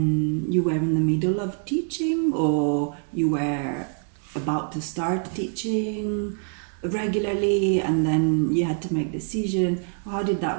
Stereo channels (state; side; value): silent; left; 56 dB below the other